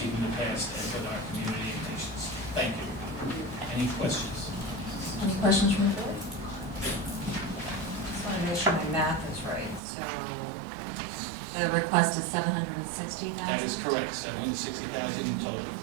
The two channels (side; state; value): left; drops out; at 9.8 s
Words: in the past and with our community and patients. Thank you. Any questions? Any questions from the board? Just want to make sure my math is right. So the request is $760,000? That is correct, $760,000 in total,